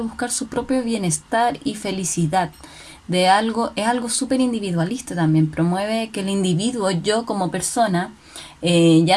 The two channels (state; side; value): identical; both; correlation 1.00